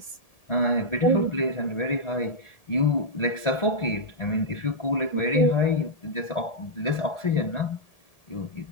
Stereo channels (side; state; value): left; late; 1.7 ms